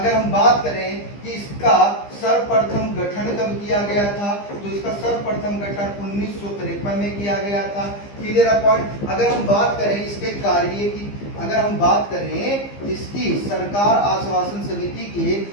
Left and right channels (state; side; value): late; right; 15 ms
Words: हम बात करें कि इसका सर्वप्रथम गठन कब किया गया था, तो इसका सर्वप्रथम गठन 1953 में किया गया था। Clear point. अगर हम बात करें इसके कार्य की, अगर हम बात करें इसकी सरकार आश्वासन समिति के